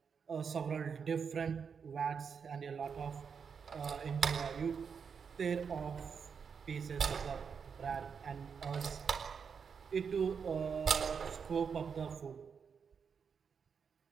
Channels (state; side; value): quieter; left; 6.3 dB